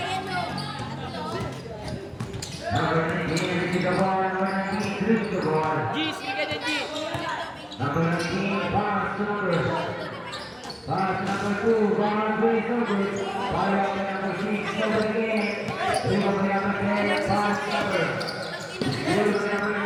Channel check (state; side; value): identical; both; correlation 1.00